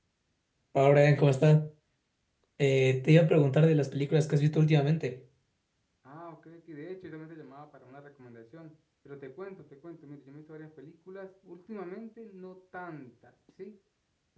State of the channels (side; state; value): both; identical; correlation 1.00